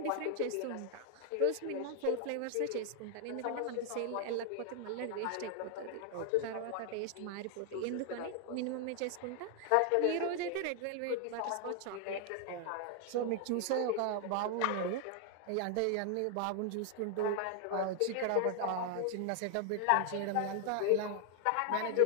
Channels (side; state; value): both; different; correlation 0.00